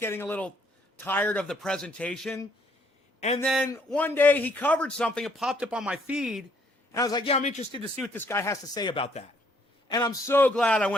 a little tired of the presentation. And then one day he covered something, it popped up on my feed, and I was like, yeah, I'm interested to see what this guy has to say about that. And I'm so glad I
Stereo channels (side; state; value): both; normal; correlation 0.67